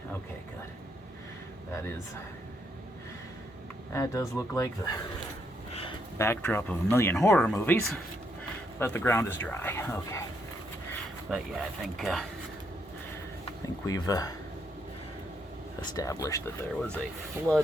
Okay, good. That does look like the backdrop of a million horror movies, but the ground is dry. Okay. But yeah, I think we've established that there was a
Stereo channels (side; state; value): both; normal; correlation 0.76